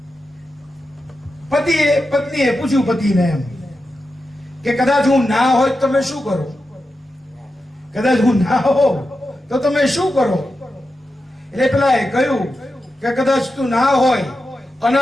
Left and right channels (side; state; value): both; normal; correlation 0.90